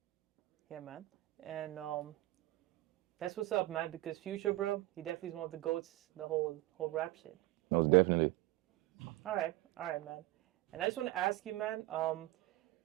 Yeah, man. And that's what's up, man. Because Future, bro, he definitely is one of the goats. The whole rap shit. Most definitely. All right, man. And I just want to ask you, man.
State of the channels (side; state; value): left; quieter; 17.9 dB